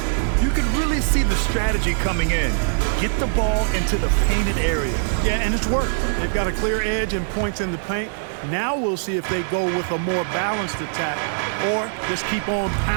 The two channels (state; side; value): silent; left; digital silence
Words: You can really see the strategy coming in. Get the ball into the painted area. Yeah, and it's worked. They've got a clear edge and points in the paint. Now we'll see if they go with a more balanced attack or just keep on